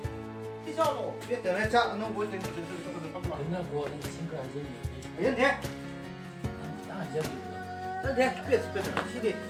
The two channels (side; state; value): both; identical; correlation 1.00